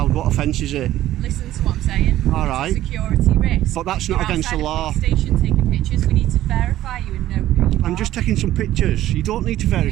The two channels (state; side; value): quieter; left; 13.9 dB